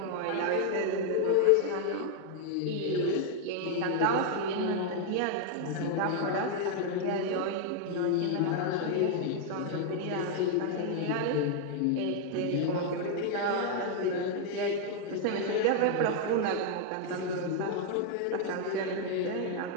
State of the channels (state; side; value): different; both; correlation 0.00